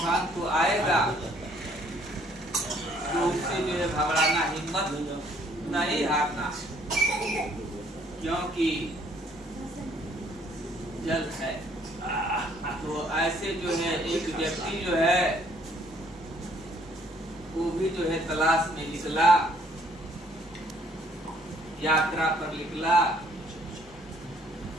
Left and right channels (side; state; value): both; normal; correlation 0.63